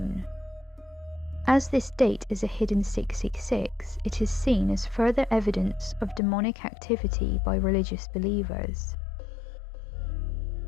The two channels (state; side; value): drops out; right; at 6.2 s